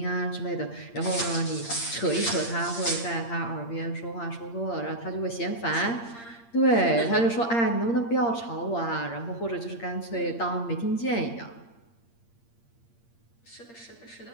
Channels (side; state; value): right; late; 8.6 ms